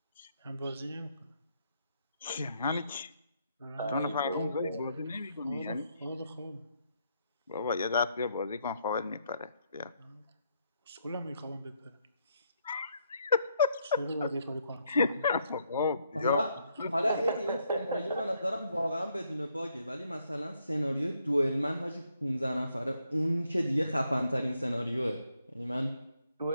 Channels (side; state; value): both; inverted; correlation -0.74